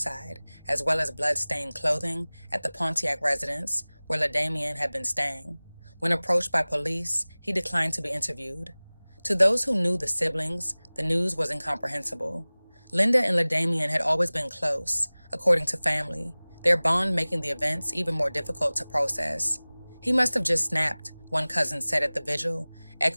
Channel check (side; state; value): both; inverted; correlation -1.00